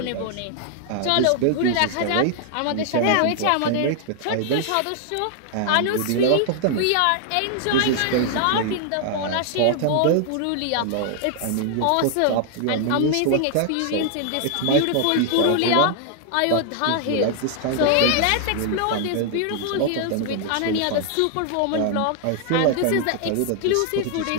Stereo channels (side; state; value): both; different; correlation 0.00